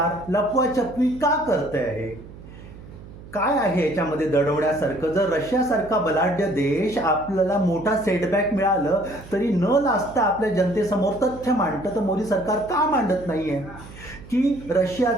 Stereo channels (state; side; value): noise; right; hum, 17 dB below the sound